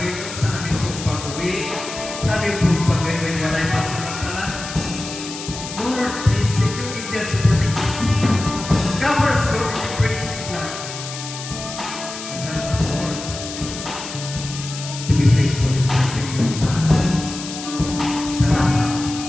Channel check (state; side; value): noise; left; hiss, 10 dB below the sound